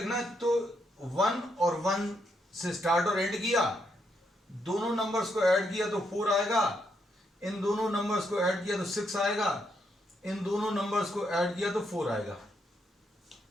है तो 1 और 1 से स्टार्ट और एंड किया, दोनों नंबर्स को ऐड किया तो 4 आएगा, इन दोनों नंबर्स को ऐड किया तो 6 आएगा, इन दोनों नंबर्स को ऐड किया तो 4 आएगा.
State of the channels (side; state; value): both; normal; correlation 0.78